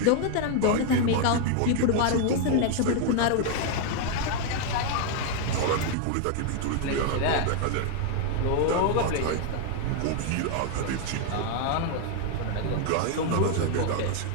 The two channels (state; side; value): different; both; correlation 0.00